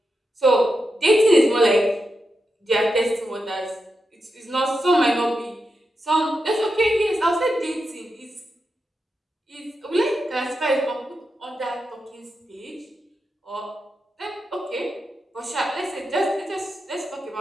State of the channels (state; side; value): normal; both; correlation 0.88